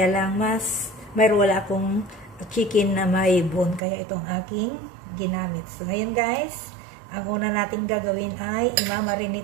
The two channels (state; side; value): drops out; left; at 3.8 s